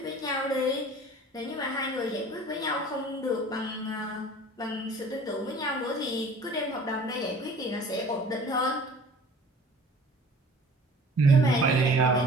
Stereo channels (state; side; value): normal; both; correlation 0.46